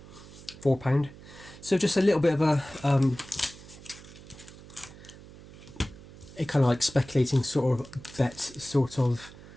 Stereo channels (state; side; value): noise; right; hum, 19 dB below the sound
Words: So just a little bit of a kind of like speculating sort of bet, sort of